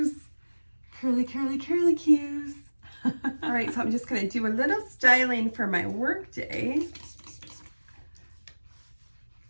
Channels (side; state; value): both; inverted; correlation -1.00